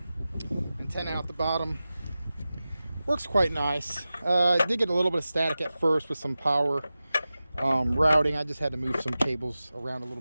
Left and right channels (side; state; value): both; inverted; correlation -0.95